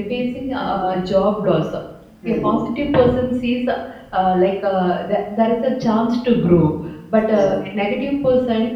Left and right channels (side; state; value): both; identical; correlation 1.00